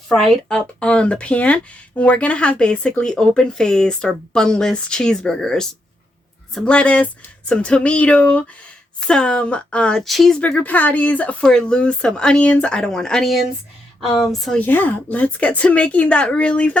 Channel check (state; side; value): normal; both; correlation 0.81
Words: up on the pan. And we're going to have basically open-faced or bunless cheeseburgers. Some lettuce, some tomato, some cheeseburger patties for Lou, some onions. I don't want onions. So yeah, let's get to making that really